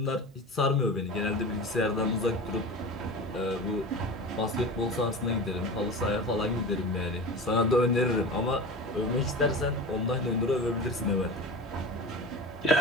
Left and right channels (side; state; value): both; normal; correlation 0.30